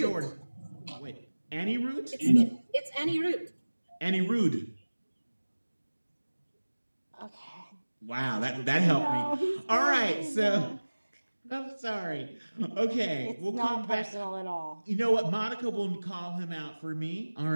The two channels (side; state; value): both; inverted; correlation -1.00